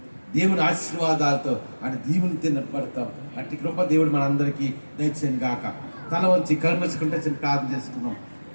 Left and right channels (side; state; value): both; inverted; correlation -1.00